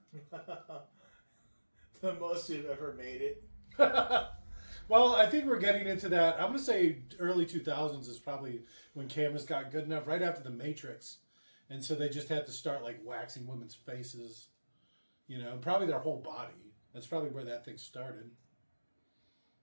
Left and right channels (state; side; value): inverted; both; correlation -1.00